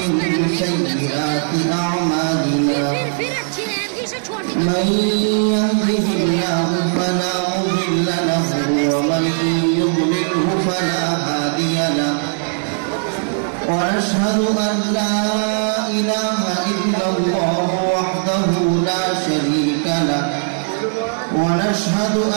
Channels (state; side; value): silent; left; digital silence